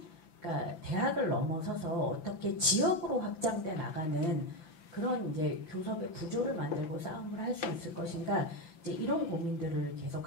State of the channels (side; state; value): right; late; 5.9 ms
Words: 그러니까 대학을 넘어서서 어떻게 지역으로 확장돼 나가는 그런 이제 교섭의 구조를 만들고 싸움을 할 수 있을 것인가. 이제 이런 고민들을